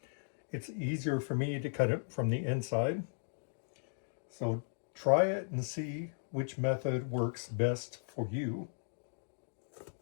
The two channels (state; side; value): silent; right; digital silence